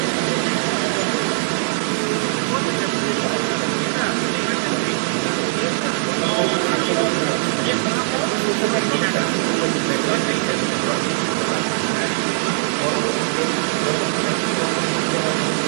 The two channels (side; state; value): left; silent; 60 dB below the other